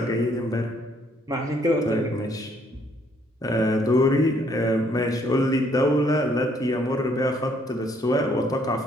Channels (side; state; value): both; normal; correlation 0.66